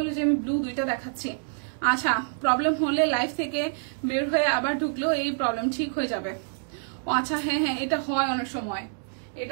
যে আমি ব্লু দুইটা দেখাচ্ছি। আচ্ছা, প্রবলেম হলে লাইভ থেকে বের হয়ে আবার ঢুকলেও এই প্রবলেম ঠিক হয়ে যাবে। আচ্ছা, হ্যাঁ হ্যাঁ, এটা হয় অনেক সময়,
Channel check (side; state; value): left; silent; digital silence